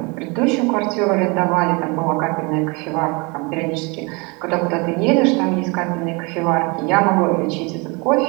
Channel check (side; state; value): left; quieter; 28.8 dB